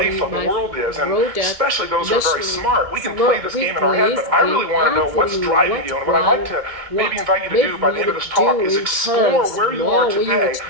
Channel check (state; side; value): late; left; 2.2 ms